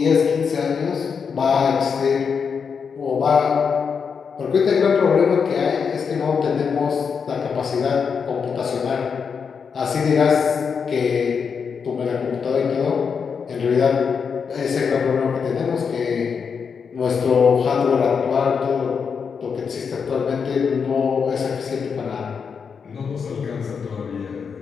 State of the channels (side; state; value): right; quieter; 6.2 dB